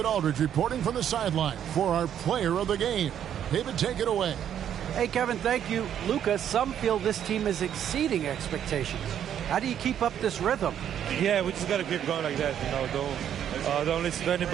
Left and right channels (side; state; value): left; quieter; 9.7 dB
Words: Aldridge reporting from the sideline for our player of the game. David, take it away. Hey, Kevin, thank you. Luka, some feel this team is exceeding expectations. How do you keep up this rhythm? Yeah, we just got to keep going like that. You know, don't listen to